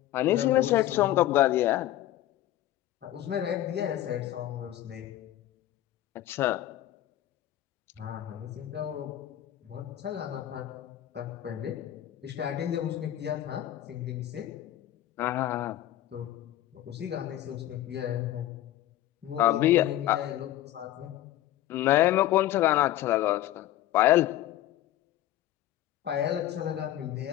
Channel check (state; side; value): quieter; right; 13.6 dB